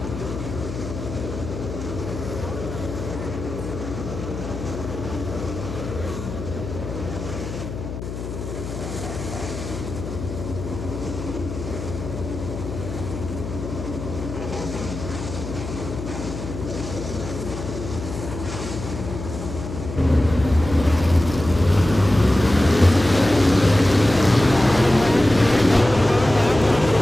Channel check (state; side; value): noise; left; hum, 8 dB below the sound